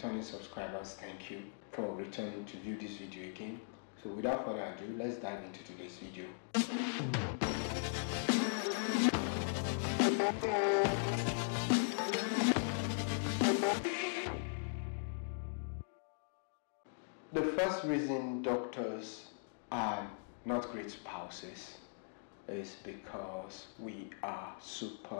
subscribers, thank you for returning to view this video again. So without further ado, let's dive into today's video. The first reason doctors are not great spouses is because we are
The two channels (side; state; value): right; silent; digital silence